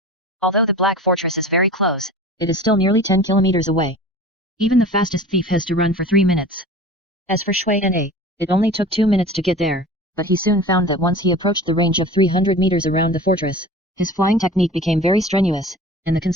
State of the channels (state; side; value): normal; both; correlation 0.39